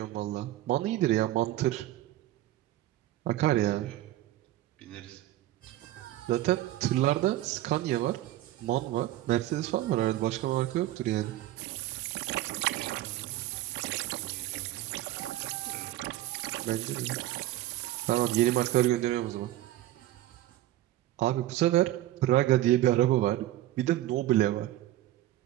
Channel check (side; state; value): left; quieter; 14.9 dB